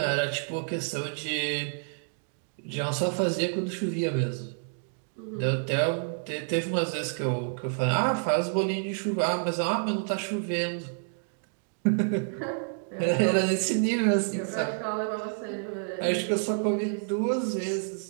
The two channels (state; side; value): silent; left; digital silence